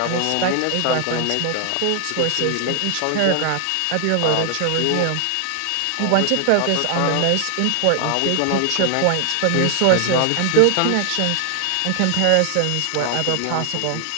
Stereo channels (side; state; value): both; different; correlation 0.00